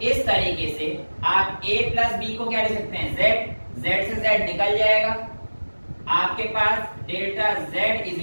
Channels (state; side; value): inverted; both; correlation -1.00